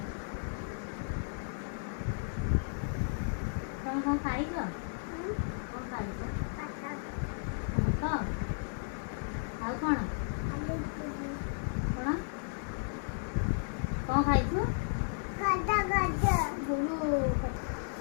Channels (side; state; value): right; silent; digital silence